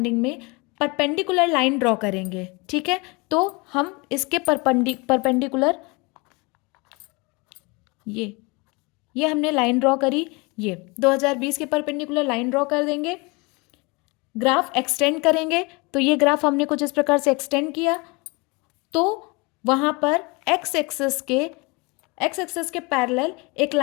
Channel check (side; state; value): right; quieter; 27.6 dB